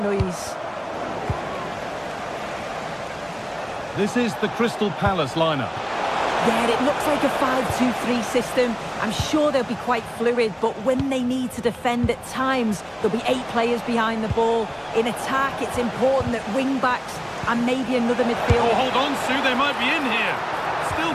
noise. This is the Crystal Palace lineup. Yeah, it looks like a 5-2-3 system. I'm sure they'll be quite fluid, but when they need to defend at times, there'll be 8 players behind the ball. In attack, it's important that wing-backs and maybe another midfielder... Oh, hold on, Sue, they might be in here.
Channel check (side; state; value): both; identical; correlation 1.00